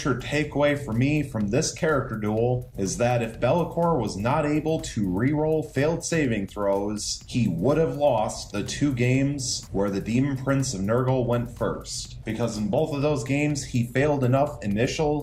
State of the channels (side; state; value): both; identical; correlation 1.00